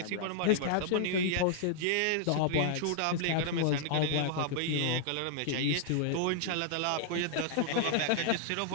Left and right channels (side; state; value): both; different; correlation -0.01